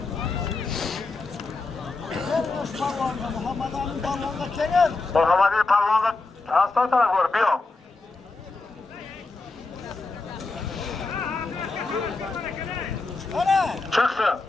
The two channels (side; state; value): right; quieter; 3.6 dB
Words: Muhammed'in Palvan'da hasta taraf var. Bir o. Çıksın.